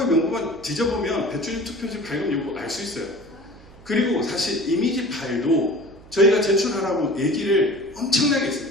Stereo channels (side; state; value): right; noise; hum, 23 dB below the sound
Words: 명부만 뒤져보면 배추림 투표지 발급 여부 알 수 있어요. 그리고 사실 이미지 파일도 저희가 제출하라고 얘기를 엄청나게